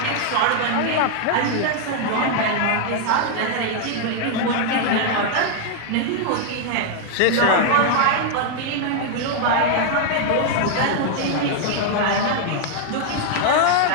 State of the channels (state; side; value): different; both; correlation 0.00